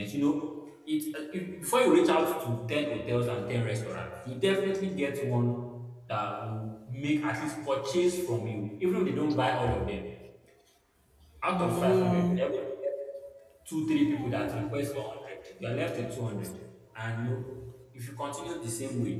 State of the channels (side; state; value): both; identical; correlation 1.00